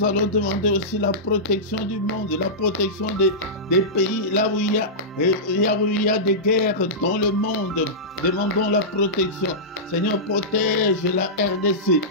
allons demander aussi la protection du monde, la protection des pays là où il y a des guerres dans le monde. Demandons la protection. Seigneur, protège la RDC.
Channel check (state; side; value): normal; both; correlation -0.15